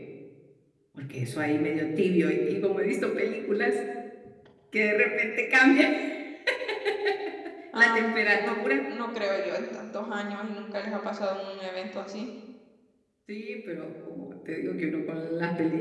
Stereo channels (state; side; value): identical; both; correlation 1.00